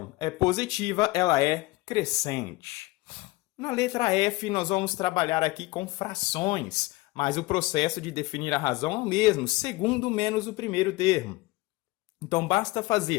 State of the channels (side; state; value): right; quieter; 20.9 dB